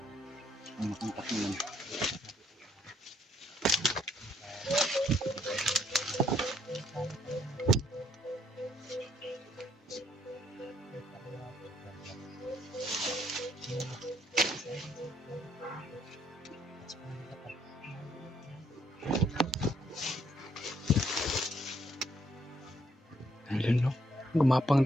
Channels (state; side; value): normal; both; correlation 0.69